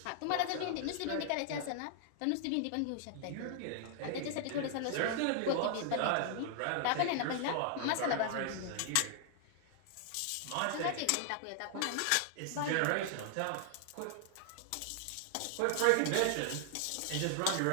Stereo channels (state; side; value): different; both; correlation 0.00